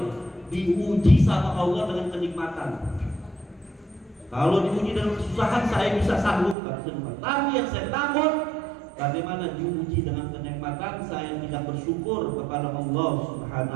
diuji sama Allah dengan kenikmatan. Kalau diuji dengan kesusahan saya bisa sanggup, tapi yang saya takut bagaimana diuji dengan kenikmatan saya tidak bersyukur kepada Allah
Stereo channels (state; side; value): drops out; left; at 6.6 s